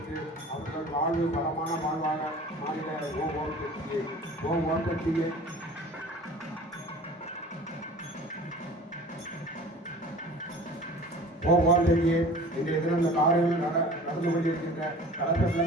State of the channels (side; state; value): both; normal; correlation 0.42